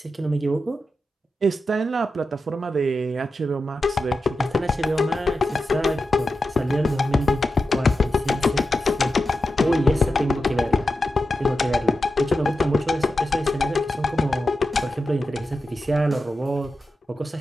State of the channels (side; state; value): both; normal; correlation 0.90